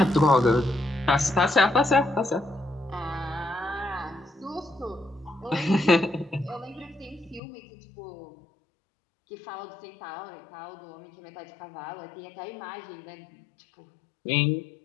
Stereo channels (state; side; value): drops out; right; at 7.4 s